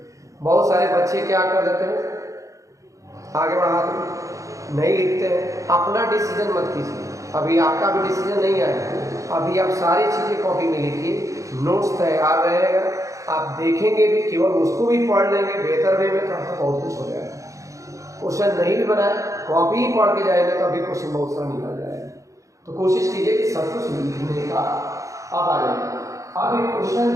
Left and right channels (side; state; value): left; late; 0.15 ms